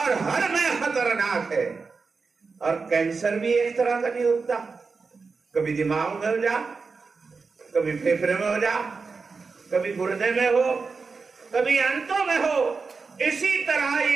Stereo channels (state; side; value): quieter; left; 4.6 dB